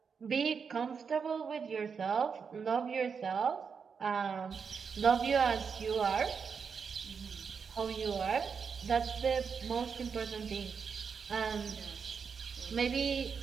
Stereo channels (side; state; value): left; quieter; 6.0 dB